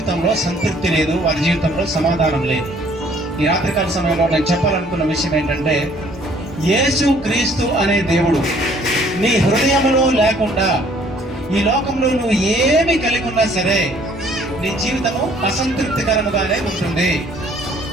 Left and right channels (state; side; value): normal; both; correlation 0.59